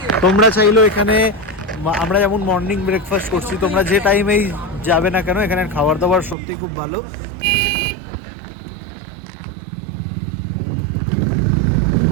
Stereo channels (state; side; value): drops out; left; at 6.4 s